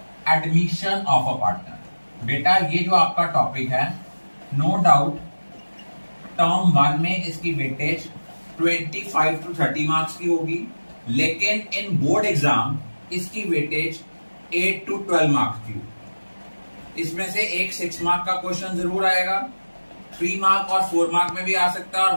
admission of a partner. बेटा ये जो आपका टॉपिक है, नो डाउट टर्म 1 में इसकी वेटेज 25 to 30 मार्क्स की होगी, लेकिन इन बोर्ड एग्जाम इसकी वेटेज 8 to 12 मार्क्स की होगी। इसमें से एक 6 मार्क का क्वेश्चन जरूर आएगा, 3 मार्क और 4 मार्क में भी आ सकता है और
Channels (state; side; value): inverted; both; correlation -1.00